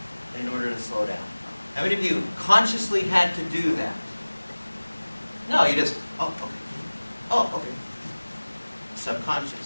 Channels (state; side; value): inverted; both; correlation -1.00